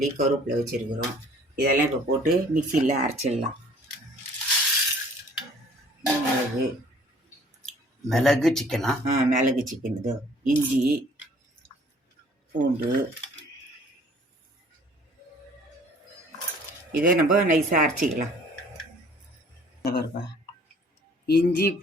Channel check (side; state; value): both; normal; correlation 0.55